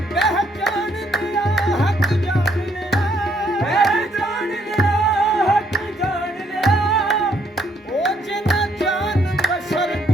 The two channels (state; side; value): normal; both; correlation 0.70